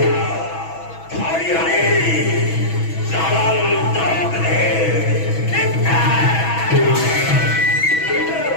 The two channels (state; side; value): late; right; 6.1 ms